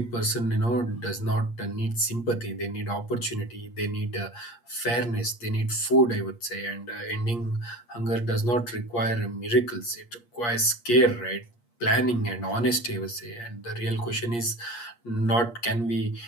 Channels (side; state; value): right; late; 8.5 ms